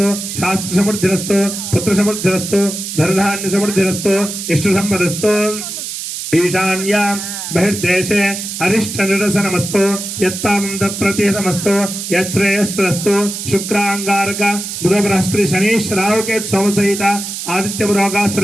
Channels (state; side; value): noise; right; hiss, 6 dB below the sound